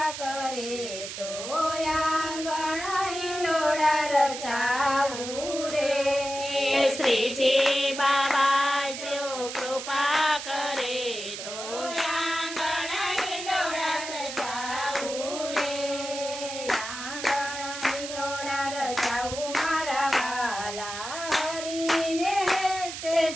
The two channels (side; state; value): right; noise; hiss, 8 dB below the sound